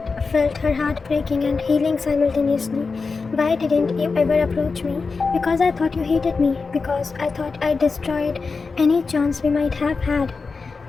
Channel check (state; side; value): quieter; right; 4.5 dB